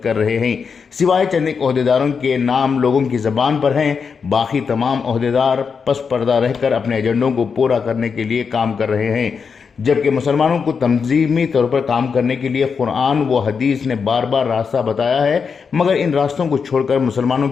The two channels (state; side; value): quieter; right; 5.8 dB